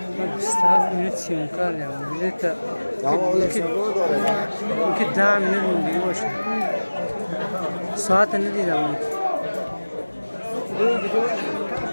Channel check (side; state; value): both; inverted; correlation -1.00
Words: استاف میره سیمکار یا میره تا که 10 minut موندگی باشه ساعت ندیدم